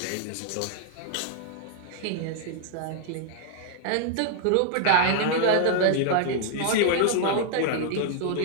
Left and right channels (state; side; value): different; both; correlation 0.00